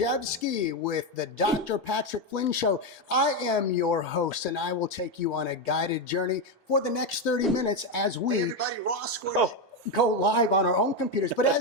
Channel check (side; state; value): both; normal; correlation 0.09